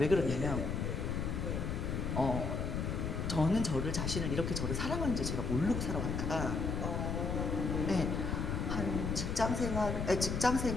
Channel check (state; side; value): noise; left; rumble, 1 dB below the sound